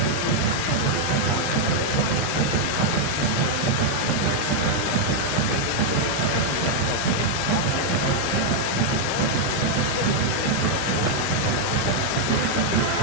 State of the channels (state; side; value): normal; both; correlation -0.01